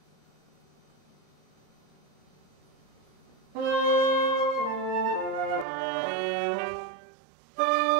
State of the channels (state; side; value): drops out; left; at 5.7 s